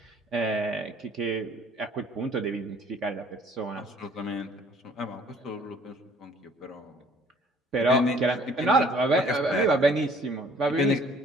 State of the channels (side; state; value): both; normal; correlation 0.56